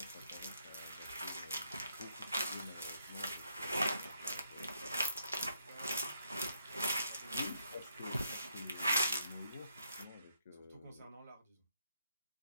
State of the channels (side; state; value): both; inverted; correlation -0.75